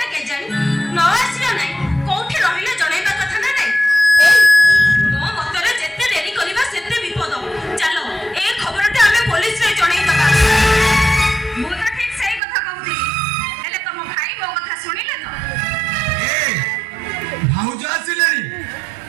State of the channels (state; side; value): drops out; left; at 12.4 s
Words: के जानी न आसियो नाही कोठी रहिले जणाइबा कथा ना नाही मो मतरे जेते देरी करिबा से